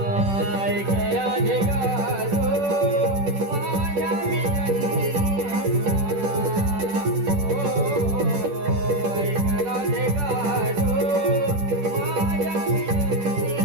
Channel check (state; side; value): late; left; 10 ms